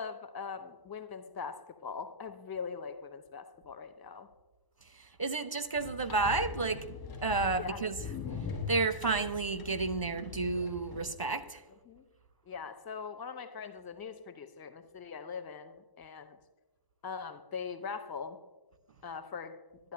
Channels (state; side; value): late; right; 1.0 ms